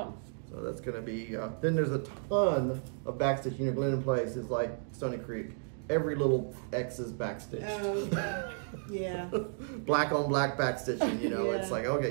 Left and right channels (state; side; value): silent; left; digital silence